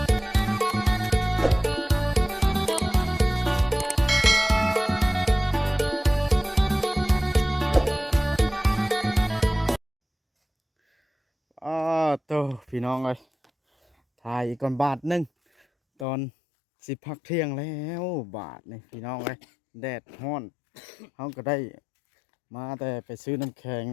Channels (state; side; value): drops out; right; at 16.1 s